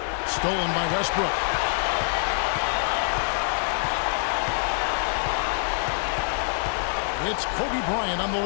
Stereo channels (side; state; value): right; silent; digital silence